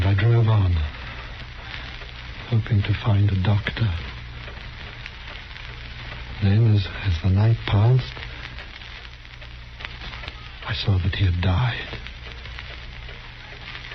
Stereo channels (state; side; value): identical; both; correlation 1.00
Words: I drove on, hoping to find a doctor. Then, as the night passed, I saw that he had died.